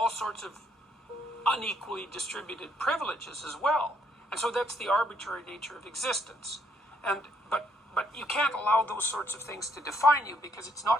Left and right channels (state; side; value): normal; both; correlation 0.70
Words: sorts of unequally distributed privileges as well. And so that's the arbitrary nature of existence. But you can't allow those sorts of things to define you, because it's